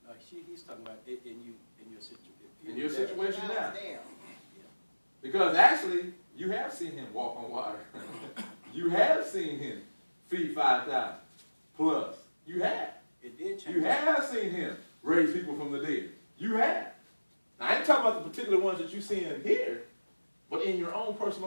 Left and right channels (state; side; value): inverted; both; correlation -1.00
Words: it. No, he's talking about it in your situation. In your situation I now. was there. Because actually, you have seen him walk on water. You have seen him feed 5,000 plus. You have. It did change. You have seen him raise people from the dead. You have. Now, I ain't talking about the particular ones that you see in here, but in your own